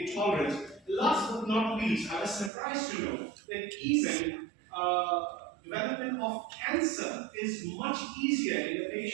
Last but not least, I was surprised to know that even development of cancer is much easier in the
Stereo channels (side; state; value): left; drops out; at 2.5 s